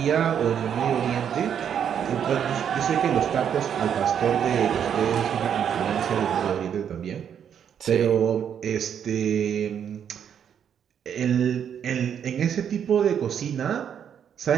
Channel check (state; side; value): quieter; left; 8.5 dB